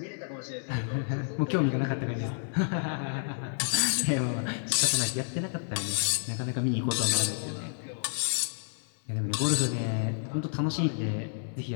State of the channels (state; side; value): silent; right; 58 dB below the other